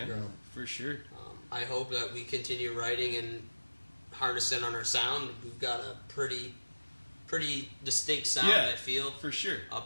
grow. man, for sure. I hope that we continue writing and harnessing on our sound. We've got a pretty distinct sound, Yeah. I feel. For sure.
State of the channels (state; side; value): inverted; both; correlation -1.00